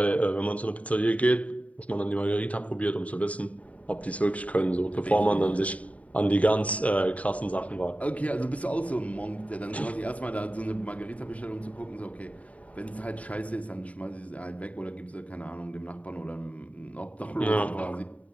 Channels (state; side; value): late; right; 0.068 ms